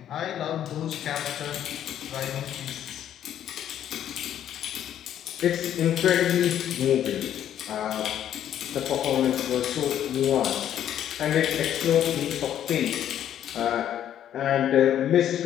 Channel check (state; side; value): quieter; right; 10.6 dB